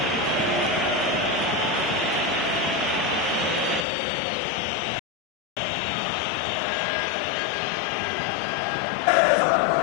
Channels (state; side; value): drops out; right; at 3.9 s